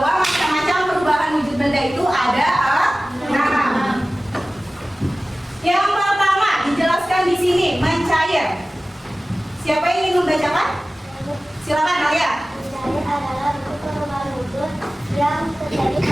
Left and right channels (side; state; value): both; normal; correlation 0.97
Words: macam-macam perubahan wujud benda itu ada 6. Yang pertama dijelaskan di sini mencair. Siapa yang ingin membacakan? Silakan kalian. Mencair adalah bentuk perubahan wujud yang terjadi